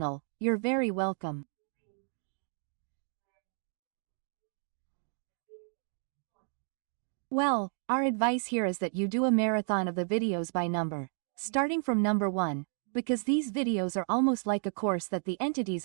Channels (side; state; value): left; silent; 56 dB below the other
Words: you're very welcome. Well, our advice here is that you do a marathon of the videos by number, starting from number 1, because these videos are almost like a course that the entities